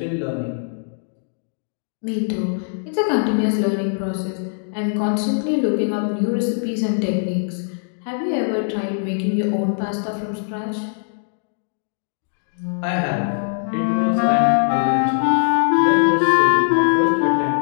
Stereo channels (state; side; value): silent; right; digital silence